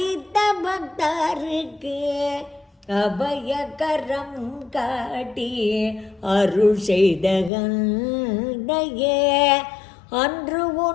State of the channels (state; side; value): drops out; right; at 7.5 s